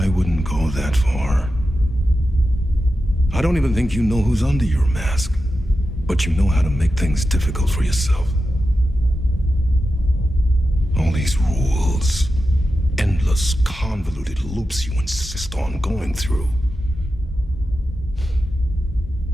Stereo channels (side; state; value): both; normal; correlation 0.91